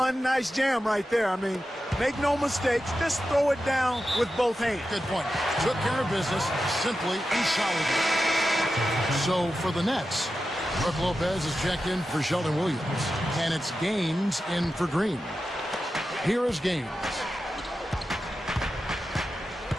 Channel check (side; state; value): both; normal; correlation 0.91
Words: nice jam right there. I mean, make no mistakes. Just throw it down with both hands. Good point. Took care of business simply and solidly. So for the Nets, Brook Lopez is checked in for Sheldon Williams. And it's Gaines in for Green. Here is Gaines.